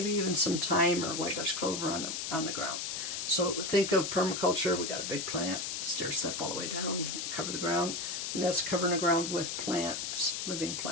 even some thyme or white Dutch clover on the ground. So think of permaculture. We got a big plant, stair step all the way down, cover the ground, and that's covering the ground with plants, living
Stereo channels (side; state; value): left; noise; hiss, 3 dB below the sound